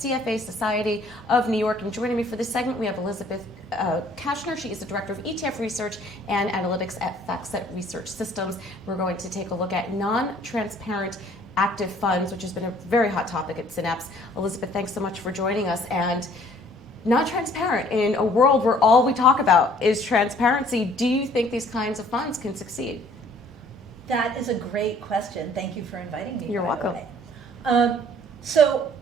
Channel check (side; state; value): both; normal; correlation 0.57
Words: CFA Society of New York. And joining me for this segment, we have Elisabeth Kashner. She is the Director of ETF Research and Analytics at FactSet Research Systems. We're going to take a look at non-transparent active funds, which has been a very hot topic at Synapse. Elisabeth, thanks so much for joining us. And not transparent in a world where all we talk about is transparency. Do you think these kinds of funds can succeed? That is a great question. Thank you for inviting me. You're welcome. So